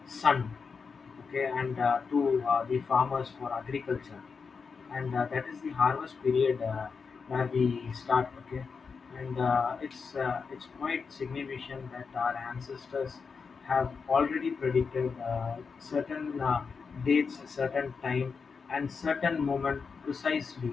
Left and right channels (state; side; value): quieter; right; 5.3 dB